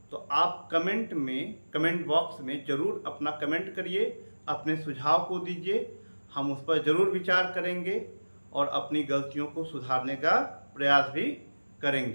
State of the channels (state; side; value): inverted; both; correlation -1.00